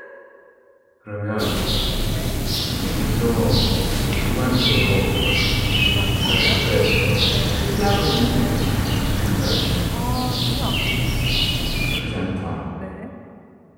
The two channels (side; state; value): both; identical; correlation 1.00